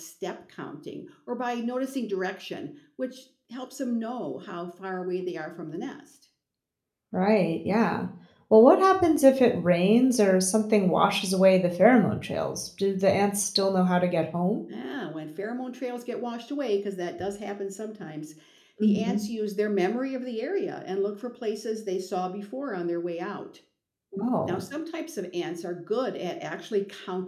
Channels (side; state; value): both; identical; correlation 1.00